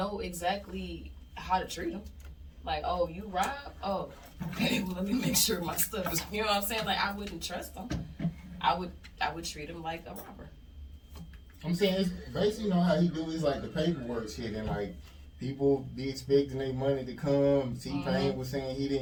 exactly how to treat them. Like, oh, you rob? Oh, okay. Well, let me make sure my stuff is. You know what I'm saying? Like, I wouldn't trust them. I would treat them like a robber. I'm saying it's basically how he do is like the paperwork shit, and like people be expecting their money to come. T-Pain was saying he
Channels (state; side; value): identical; both; correlation 1.00